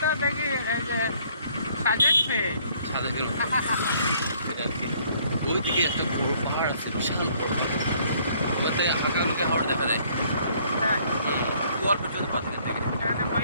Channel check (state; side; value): inverted; both; correlation -0.62